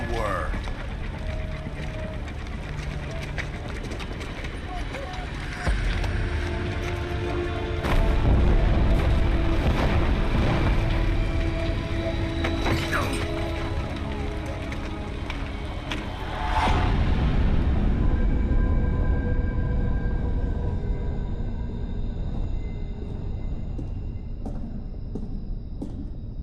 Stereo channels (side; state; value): both; identical; correlation 1.00